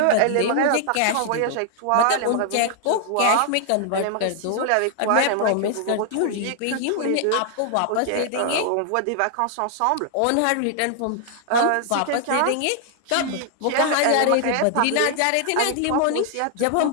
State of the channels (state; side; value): different; both; correlation 0.00